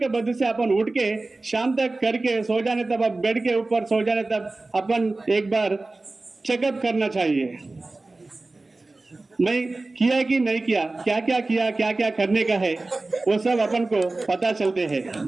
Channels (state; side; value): quieter; left; 3.2 dB